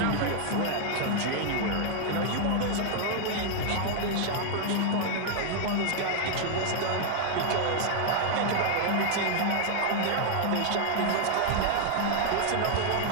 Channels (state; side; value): different; both; correlation 0.00